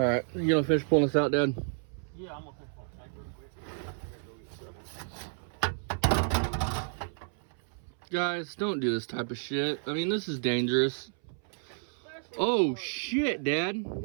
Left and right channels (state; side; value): silent; left; 57 dB below the other